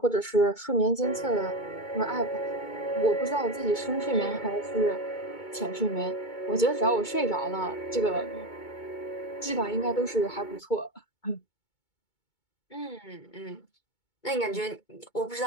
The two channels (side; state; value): right; late; 2.2 ms